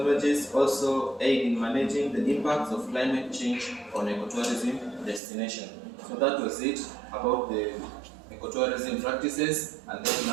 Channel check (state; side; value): drops out; left; at 5.2 s